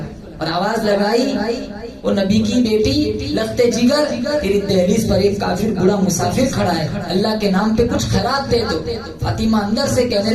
اور آواز لگائی, وہ نبی کی بیٹی لخت جگر, تیری دہلیز پر ایک کافر بڑا مسافر کھڑا ہے, اللہ کے نام پہ کچھ خیرات دے دو. فاطمہ اندر سے کہنے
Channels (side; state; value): both; identical; correlation 1.00